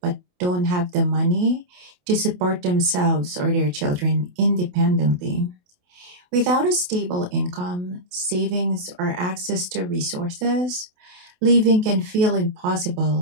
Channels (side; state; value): left; late; 28 ms